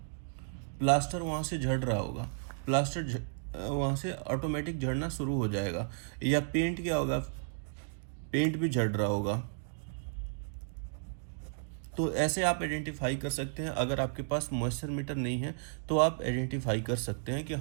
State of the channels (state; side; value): silent; left; digital silence